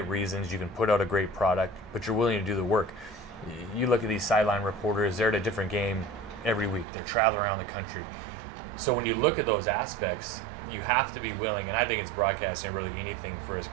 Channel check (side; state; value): left; drops out; at 6.9 s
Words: reasons. You can put out a great product, but you're willing to do the work. You look at these sideline reporters, they're at a different game every week. They're traveling around the country. So when you look at those aspects, you have to be willing, and I think it's broadcasting, really anything for a